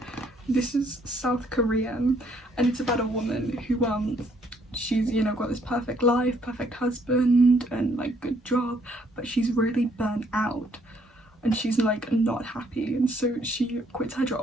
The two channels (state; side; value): normal; both; correlation 0.67